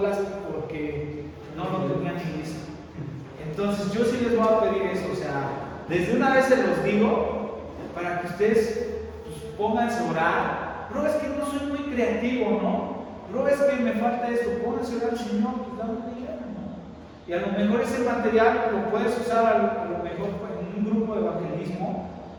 porque no lo tenía ni listo. Entonces yo sí les voy a pedir eso, o sea, desde una vez se los digo, para que ustedes pues, pónganse a orar. Bro, es que no soy muy creativo, ¿no? Bro, es que me falta esto. Pónganse a orar al Señor, pues dame una idea, ¿no? Y a lo mejor ese material lo puedes usar a lo mejor en un grupo de evangelismo,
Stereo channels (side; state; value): both; identical; correlation 1.00